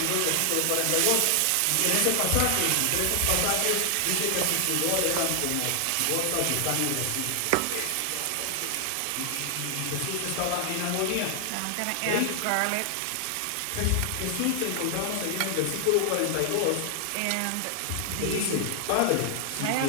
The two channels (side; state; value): both; different; correlation 0.00